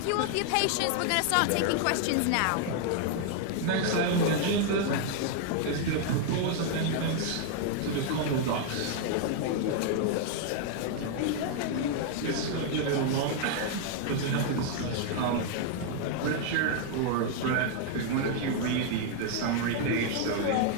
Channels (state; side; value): different; both; correlation 0.00